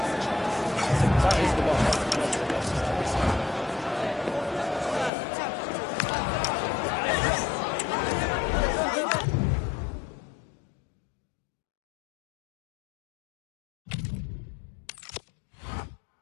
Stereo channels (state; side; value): drops out; right; at 5.1 s